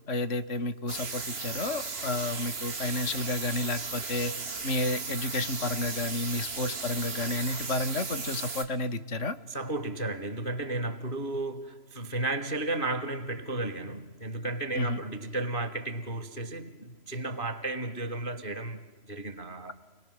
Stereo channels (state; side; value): late; right; 3.0 ms